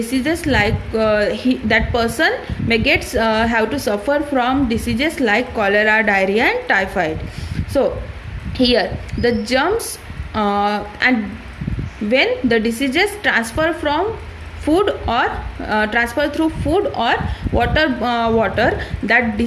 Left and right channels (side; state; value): both; identical; correlation 1.00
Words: like that person may have to suffer from diseases like cholera, diarrhea and typhoid. So here the germs and when the diseases transfer from food or transfer through food or water, that